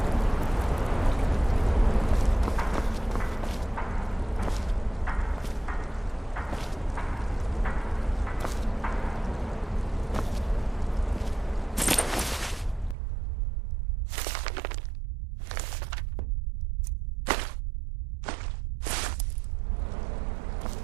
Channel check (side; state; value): left; drops out; at 13.0 s